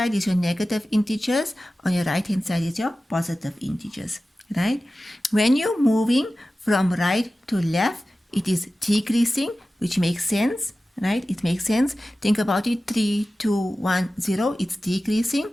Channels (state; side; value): normal; both; correlation 0.95